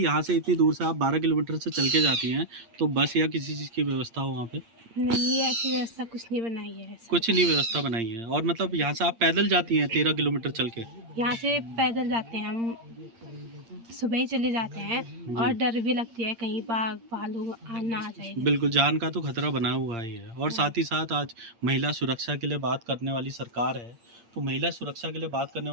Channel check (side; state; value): left; late; 8.7 ms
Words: से इतनी दूर से आप 12 किलोमीटर से चल के जाती हैं, तो बस या किसी चीज़ की व्यवस्था हो वहाँ पे? नहीं, ऐसी व्यवस्था कुछ नहीं बनाई है ऐसे। कुछ नहीं व्यवस्था बनाई है। और मतलब यहाँ से आप पैदल जाती हैं 13 किलोमीटर चल के? यहाँ से पैदल जाते हैं हम, सुबह ही चले जाते हैं और डर भी लगती है कहीं बाघ भालू ना आ जाए। बिल्कुल, जान का तो खतरा बना हुआ ही है। और साथ ही साथ आज महिला सुरक्षा के लिए बात करने वाली सरकार है, तो महिला सुरक्षा के लिए बात करने